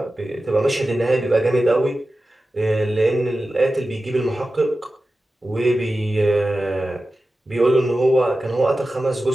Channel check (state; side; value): normal; both; correlation 0.94